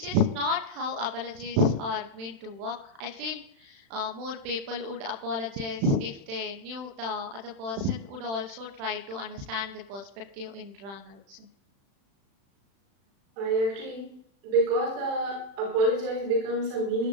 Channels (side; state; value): left; late; 36 ms